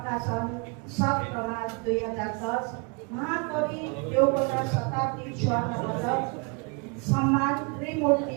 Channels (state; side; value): quieter; left; 33.0 dB